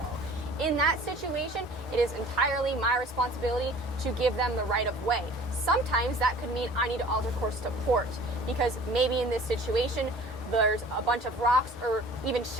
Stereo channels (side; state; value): both; normal; correlation 0.47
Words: In that situation, it is entirely my responsibility to give them the right of way. Sometimes that could mean I need to alter course to port, because maybe in this situation there's a bunch of rocks or even